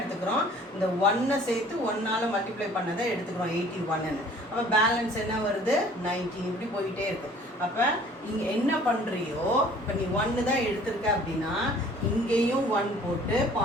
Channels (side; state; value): both; normal; correlation 0.52